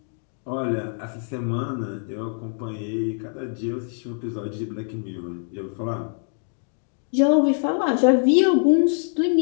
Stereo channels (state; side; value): silent; right; digital silence